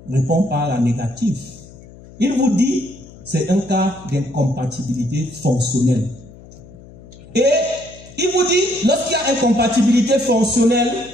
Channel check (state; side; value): noise; left; hum, 20 dB below the sound